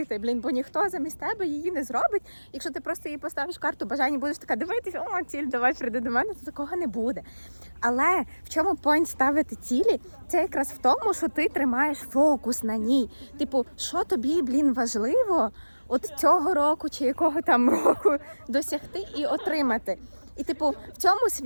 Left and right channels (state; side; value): inverted; both; correlation -1.00